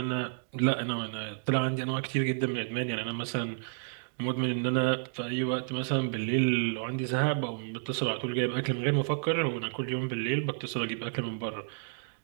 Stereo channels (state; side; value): silent; left; digital silence